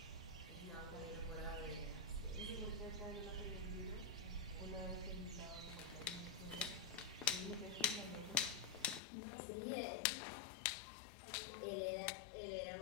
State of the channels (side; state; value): right; drops out; at 9.0 s